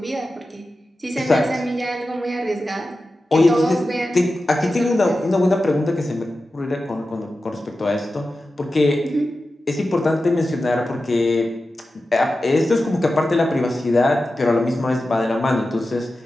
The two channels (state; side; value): normal; both; correlation 0.93